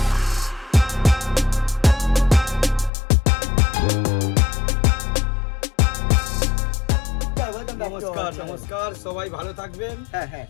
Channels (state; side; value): drops out; right; at 2.9 s